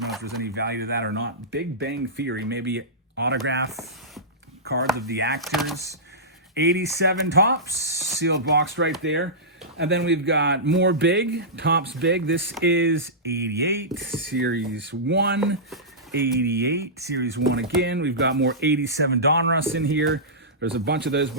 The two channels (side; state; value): both; normal; correlation -0.17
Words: know if there's any value to that or not. Big Bang Theory, maybe autograph cards of the actors. 87 Topps, sealed box right there. And then we've got more Big, Topps Big. This is 88, Series 1. 88, Series 1 again. We've got more 87 Donruss in here. There's a bunch of those